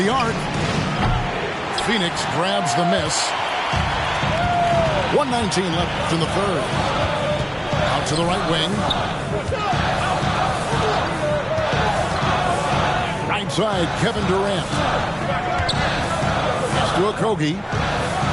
the arc. Phoenix grabs the miss. 1:19 left in the third. Out to the right wing. Right side, Kevin Durant. Pass to Okogie.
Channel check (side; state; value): both; identical; correlation 1.00